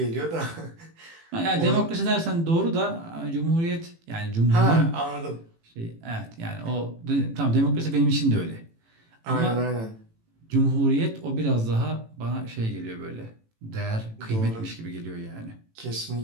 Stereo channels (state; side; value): late; left; 18 ms